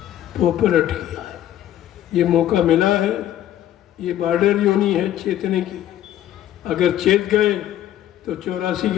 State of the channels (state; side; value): quieter; right; 12.1 dB